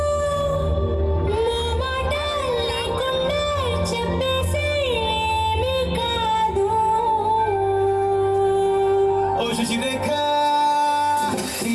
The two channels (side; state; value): both; identical; correlation 1.00